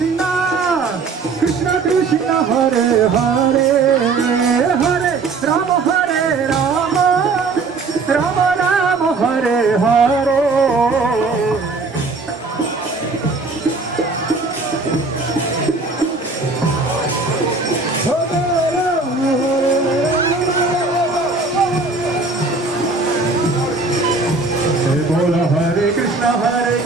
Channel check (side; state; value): left; quieter; 3.9 dB